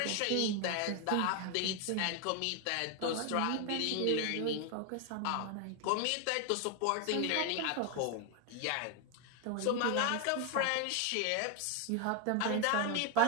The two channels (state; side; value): different; both; correlation 0.01